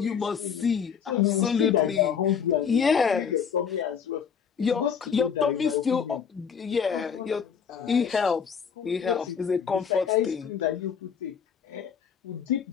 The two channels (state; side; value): quieter; right; 7.0 dB